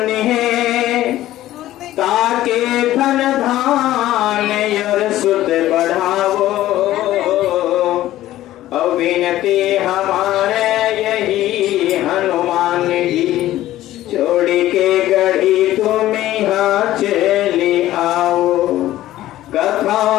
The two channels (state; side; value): quieter; right; 14.5 dB